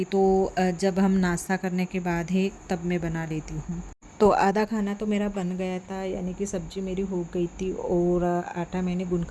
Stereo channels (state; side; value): identical; both; correlation 1.00